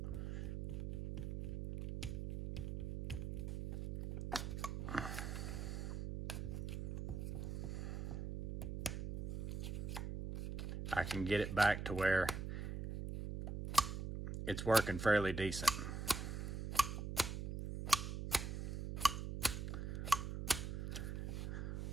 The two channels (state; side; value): noise; right; hum, 3 dB below the sound